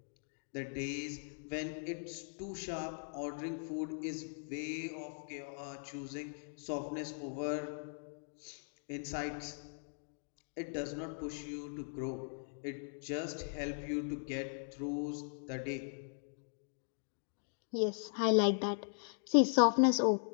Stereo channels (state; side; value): silent; right; digital silence